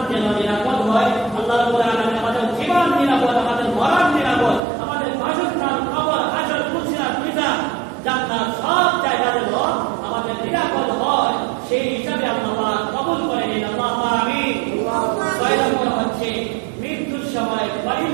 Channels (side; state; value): left; drops out; at 4.6 s